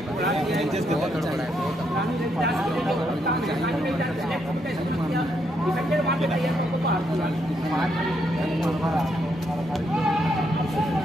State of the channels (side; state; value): both; normal; correlation 0.77